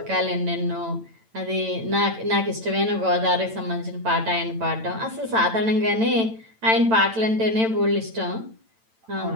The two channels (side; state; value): left; late; 8.9 ms